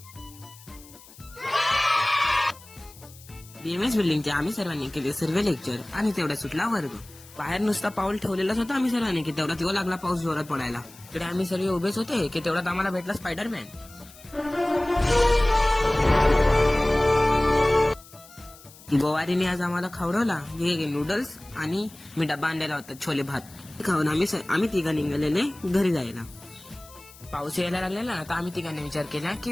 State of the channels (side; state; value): left; noise; hiss, 21 dB below the sound